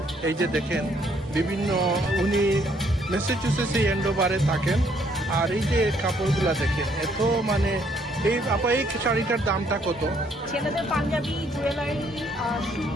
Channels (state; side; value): normal; both; correlation 0.67